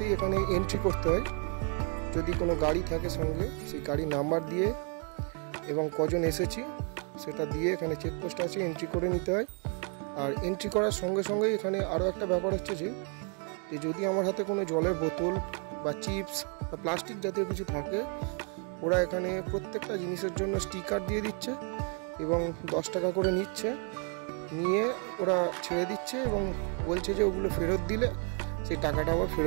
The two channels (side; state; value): left; quieter; 38.0 dB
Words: এখানে এন্ট্রি করতে হয়, যদি কোনো গাড়ি থাকে সঙ্গে সেই গাড়ির নাম্বার দিয়ে এবং কজন এসেছি সেটা দিয়ে এখানে চেকপোস্ট আছে, এন্ট্রি করে নিতে হয়। আর এন্ট্রি করার সঙ্গে সঙ্গেই এখানে আরও একটা ব্যাপার হচ্ছে যে যদি আমার হাতে কোনো জলের বোতল বা চিপস বা প্লাস্টিক জাতীয় কিছু থাকে, ওরা এখানে প্রত্যেকটা জিনিসের জন্য স্টিকার দিয়ে দিচ্ছে এবং 10 টাকা করে নিচ্ছে, নিয়ে ওরা ছেড়ে দিচ্ছে এবং বলছে যে ওগুলো ফেরত দিলে সেই টাকাটা আবার